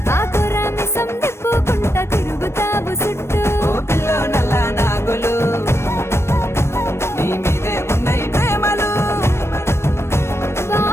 ఆకురామిసం తిప్పుకుంటా తిరుగుతావు చుట్టూ ఓ పిల్లో నల్ల నాగులు నీ మీదే ఉన్నాయి ప్రేమలు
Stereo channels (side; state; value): right; late; 0.13 ms